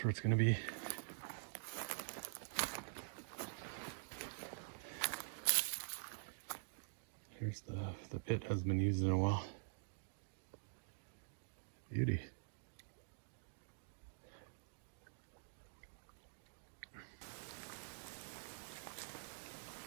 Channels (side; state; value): left; silent; digital silence